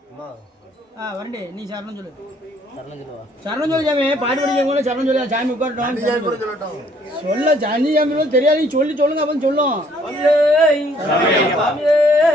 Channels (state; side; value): normal; both; correlation 0.63